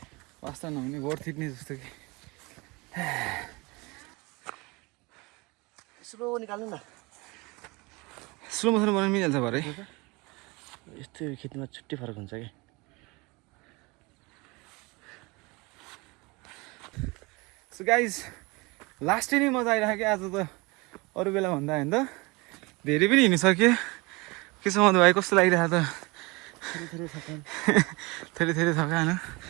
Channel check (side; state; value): left; quieter; 25.6 dB